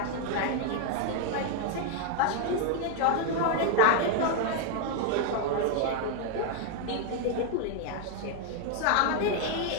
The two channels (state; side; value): different; both; correlation 0.00